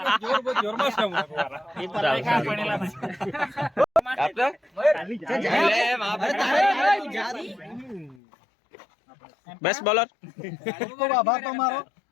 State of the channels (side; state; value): right; drops out; at 8.2 s